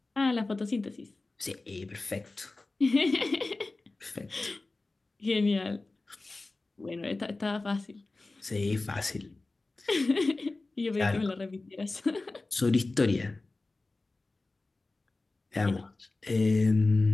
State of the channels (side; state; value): right; quieter; 3.3 dB